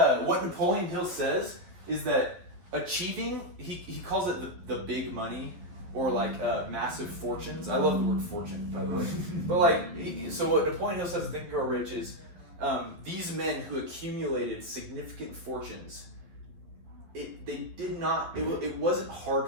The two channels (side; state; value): left; late; 11 ms